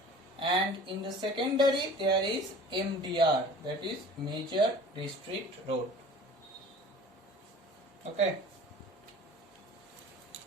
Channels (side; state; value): both; normal; correlation 0.44